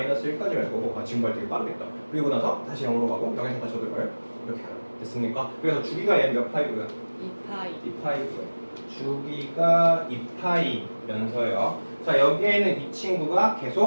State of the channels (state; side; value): inverted; both; correlation -1.00